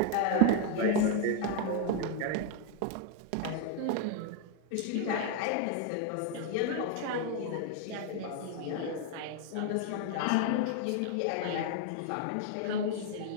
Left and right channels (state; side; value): different; both; correlation 0.01